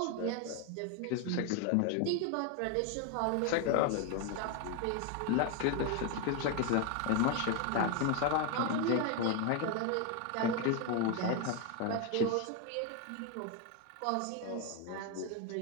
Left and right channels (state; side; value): different; both; correlation 0.01